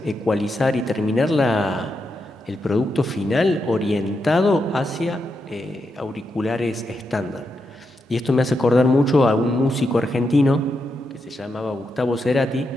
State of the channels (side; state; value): both; normal; correlation 0.85